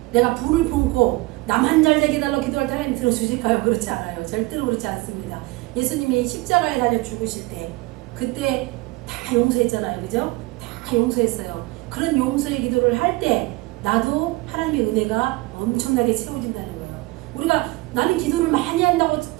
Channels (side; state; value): left; quieter; 21.8 dB